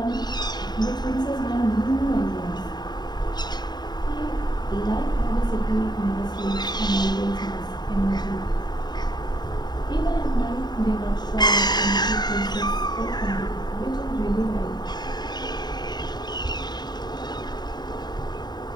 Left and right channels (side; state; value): right; late; 0.20 ms